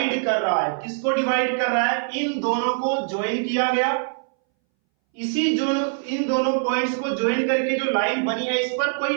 कर रहा है। किसको डिवाइड कर रहा है, इन दोनों को ज्वाइन किया गया। इसी जो इन दोनों पॉइंट्स को ज्वाइन करके जो लाइन बनी है, इस पर कोई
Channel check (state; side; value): silent; left; 62 dB below the other